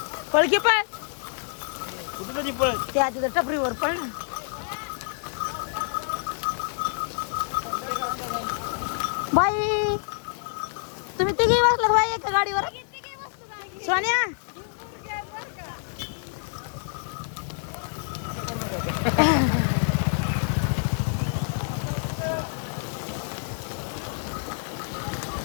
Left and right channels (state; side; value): silent; right; digital silence